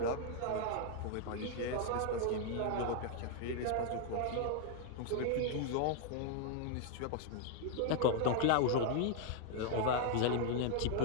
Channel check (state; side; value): different; both; correlation 0.00